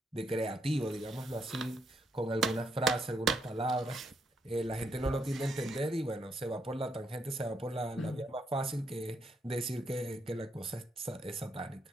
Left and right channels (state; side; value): normal; both; correlation 0.76